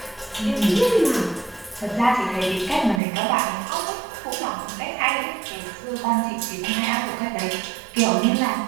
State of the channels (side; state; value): left; drops out; at 3.0 s